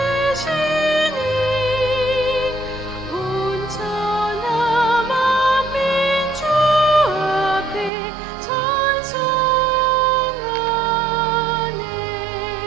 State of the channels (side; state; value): left; drops out; at 7.9 s